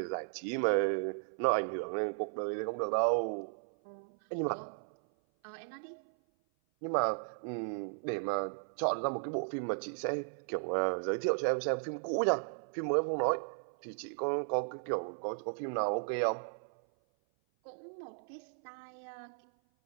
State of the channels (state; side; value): silent; left; 54 dB below the other